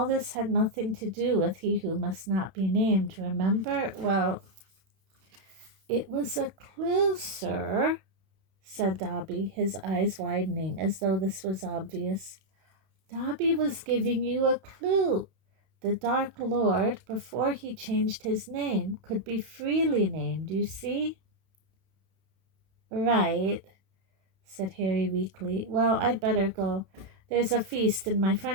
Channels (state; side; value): late; left; 31 ms